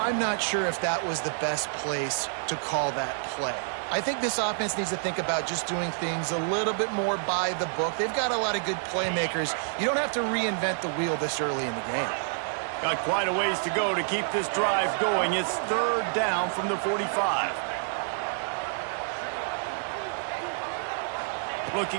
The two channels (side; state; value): left; silent; 59 dB below the other